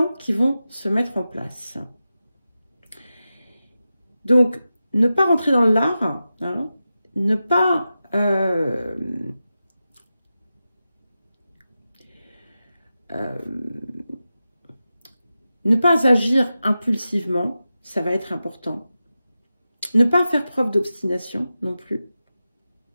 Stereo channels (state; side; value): inverted; both; correlation -0.92